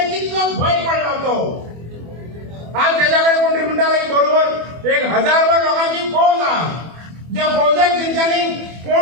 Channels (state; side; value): late; left; 24 ms